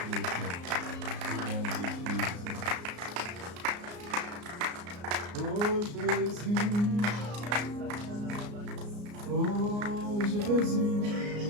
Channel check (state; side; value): late; left; 34 ms